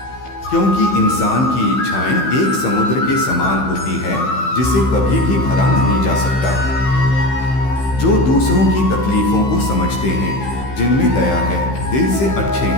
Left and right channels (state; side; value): late; right; 15 ms